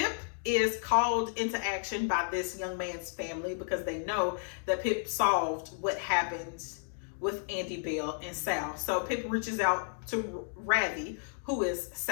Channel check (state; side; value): silent; right; digital silence